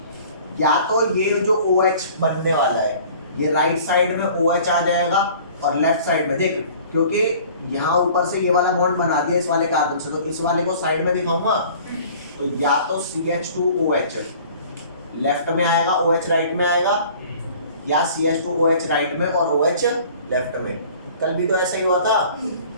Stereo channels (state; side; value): inverted; both; correlation -0.49